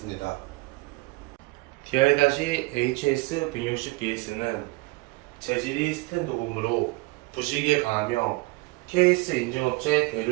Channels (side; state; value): left; quieter; 24.2 dB